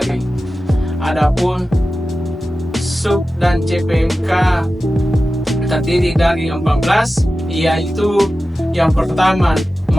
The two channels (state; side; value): normal; both; correlation 0.94